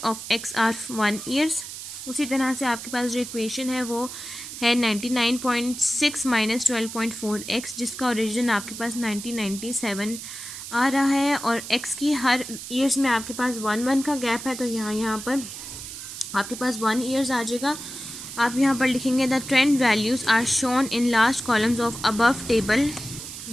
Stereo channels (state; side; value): noise; right; hiss, 10 dB below the sound